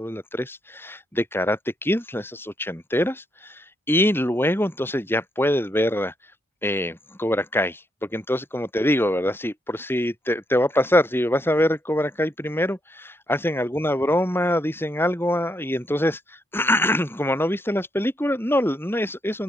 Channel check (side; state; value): both; normal; correlation 0.78